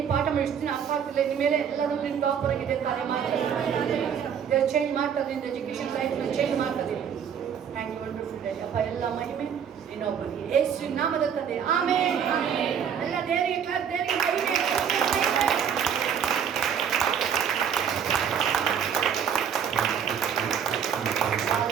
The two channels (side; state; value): left; quieter; 8.0 dB